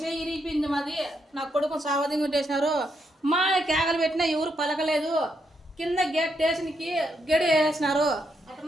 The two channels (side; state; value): both; normal; correlation 0.79